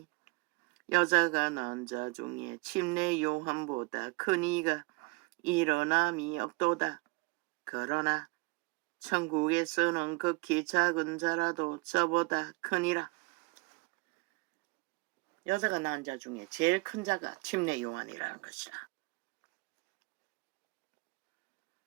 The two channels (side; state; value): left; quieter; 27.0 dB